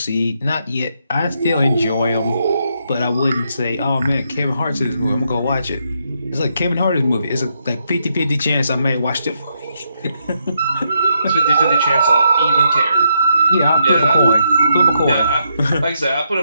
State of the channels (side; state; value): both; inverted; correlation -0.79